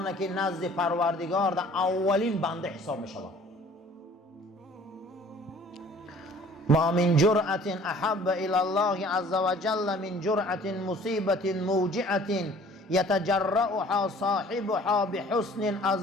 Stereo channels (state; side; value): normal; both; correlation 0.52